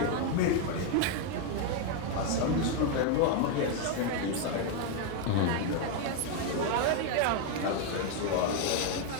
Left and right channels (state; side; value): different; both; correlation 0.01